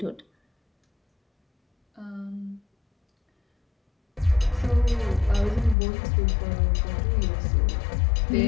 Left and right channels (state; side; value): drops out; right; at 5.8 s